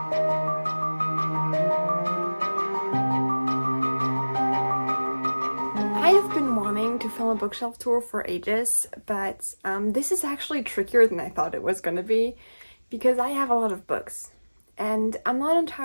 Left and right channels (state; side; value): inverted; both; correlation -1.00